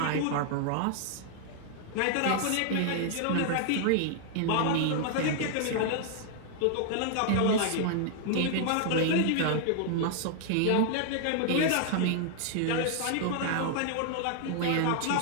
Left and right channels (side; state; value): both; different; correlation -0.01